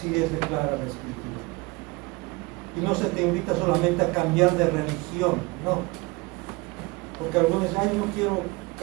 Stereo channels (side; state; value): left; quieter; 24.8 dB